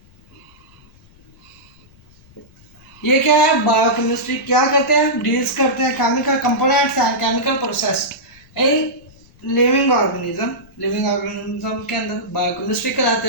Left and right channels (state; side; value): noise; left; rumble, 28 dB below the sound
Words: ये क्या है? बायोकेमिस्ट्री क्या करते हैं? डील्स करते हैं chemical components and chemical process in living organism. Living organism के अंदर बायोकेमिस्ट्री